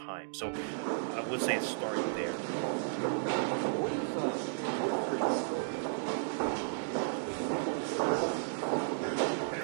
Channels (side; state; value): left; silent; digital silence